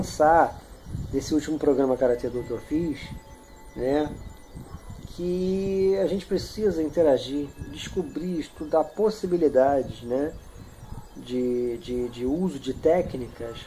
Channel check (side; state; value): both; identical; correlation 1.00